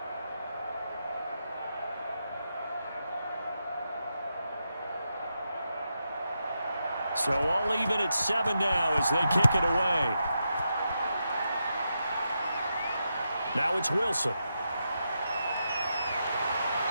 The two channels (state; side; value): inverted; both; correlation -0.85